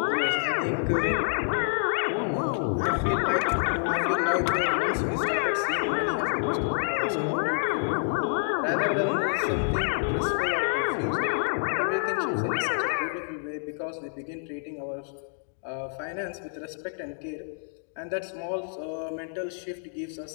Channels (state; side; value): silent; right; digital silence